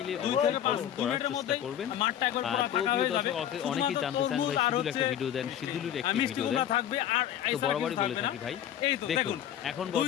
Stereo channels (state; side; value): quieter; right; 10.5 dB